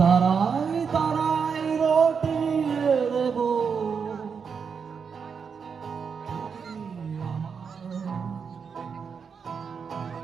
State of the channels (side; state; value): left; quieter; 6.2 dB